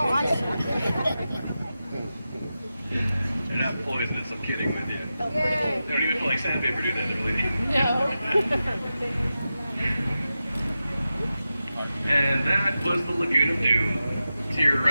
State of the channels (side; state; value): both; inverted; correlation -0.92